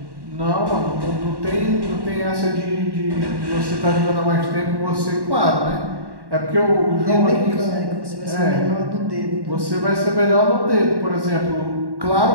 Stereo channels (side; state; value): left; late; 1.1 ms